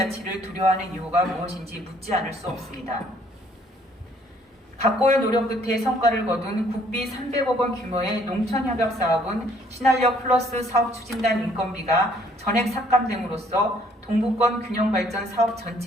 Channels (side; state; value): both; normal; correlation 0.62